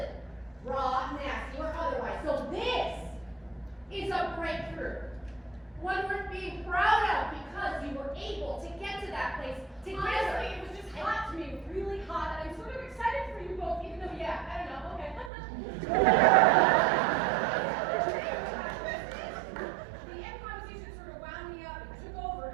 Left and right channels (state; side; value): drops out; left; at 15.3 s